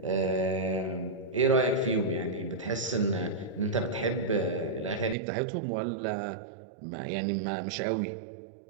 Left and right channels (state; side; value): drops out; left; at 5.2 s